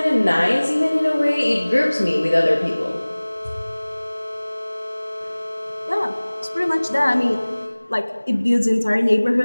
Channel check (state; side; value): inverted; both; correlation -1.00